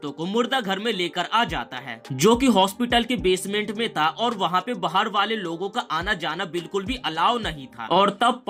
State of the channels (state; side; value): identical; both; correlation 1.00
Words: को मुर्दा घर में लेकर आ जाता है, जो कि हॉस्पिटल के बेसमेंट में था और वहाँ पे बाहर वाले लोगों का आना जाना बिल्कुल भी अलाउ नहीं था। और तब